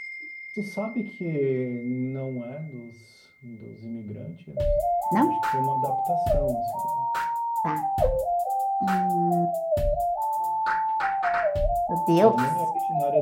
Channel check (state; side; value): identical; both; correlation 1.00